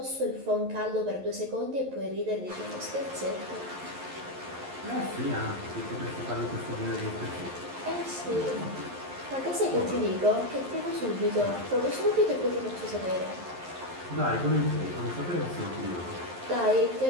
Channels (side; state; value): left; late; 11 ms